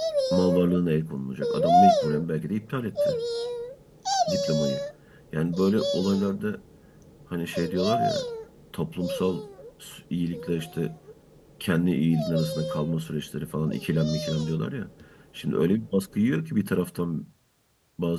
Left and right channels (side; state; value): both; identical; correlation 1.00